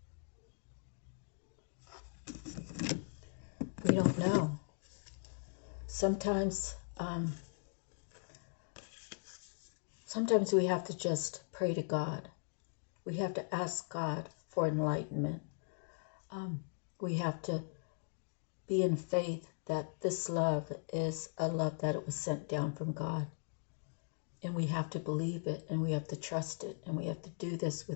We don't know. Sometimes we have to just pray to God. We have to ask God for enlightenment. We have to be in faith that this love is a love that it was sent down from God. And we have to believe it, and we have to trust it, and we have to do this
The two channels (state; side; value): silent; right; digital silence